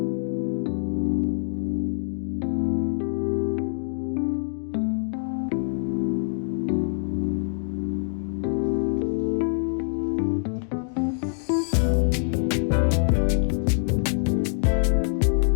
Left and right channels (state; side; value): silent; right; digital silence